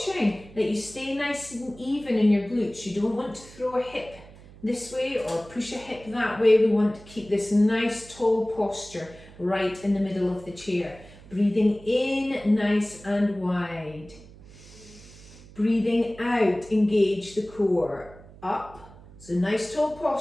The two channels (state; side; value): noise; right; hum, 20 dB below the sound